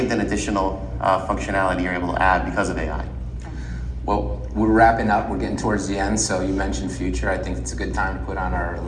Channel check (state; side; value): identical; both; correlation 1.00